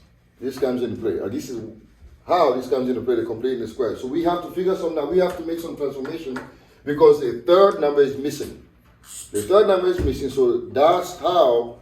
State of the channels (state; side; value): identical; both; correlation 1.00